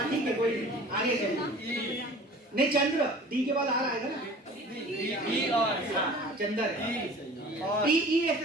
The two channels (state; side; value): normal; both; correlation 0.44